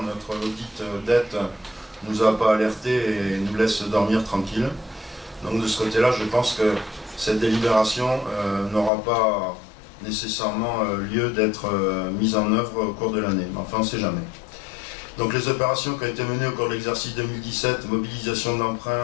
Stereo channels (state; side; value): drops out; right; at 8.9 s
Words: notre audit dette, ne nous a pas alerté et nous laisse dormir tranquille. Donc de ce côté-là, je pense que cette délibération n'aura pas nécessairement lieu d'être mise en œuvre au cours de l'année. Mais enfin, on ne sait jamais. Donc les opérations qui ont été menées au cours de l'exercice 2017, mobilisation